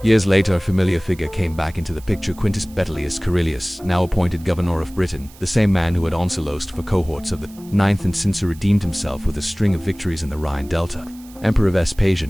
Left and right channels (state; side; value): noise; right; hiss, 23 dB below the sound